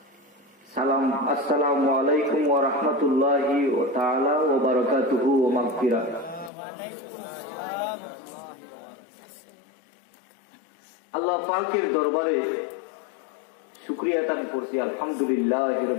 সালাম, আসসালামু আলাইকুম ওয়া রাহমাতুল্লাহি ওয়া তাআলা ওয়া বারাকাতুহু ওয়া মাগফিরাহ। আল্লাহ পাকের দরবারে শুকরিয়া আদায় করছি, আলহামদুলিল্লাহি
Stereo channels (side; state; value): right; drops out; at 6.5 s